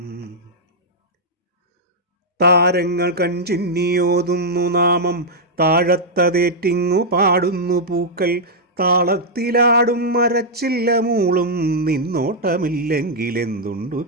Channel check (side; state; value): both; normal; correlation -0.06